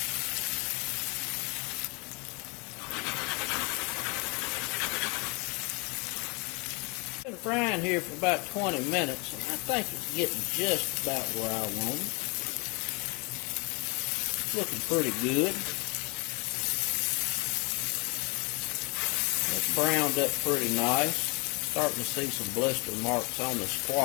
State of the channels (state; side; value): quieter; right; 30.5 dB